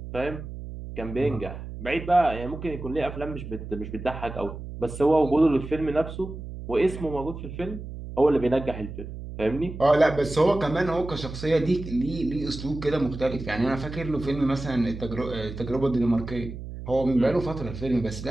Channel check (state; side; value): noise; right; hum, 10 dB below the sound